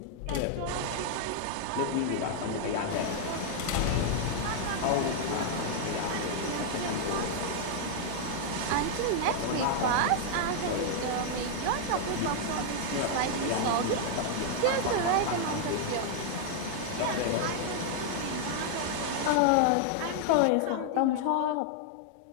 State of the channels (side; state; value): both; different; correlation 0.00